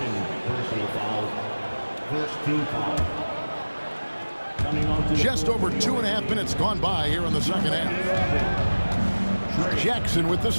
personal foul. First team foul. Coming on to Just over 2.5 minutes gone by here in the second half. Jackson with the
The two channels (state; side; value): inverted; both; correlation -1.00